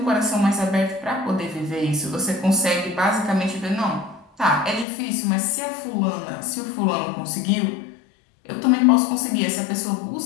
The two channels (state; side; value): drops out; right; at 4.9 s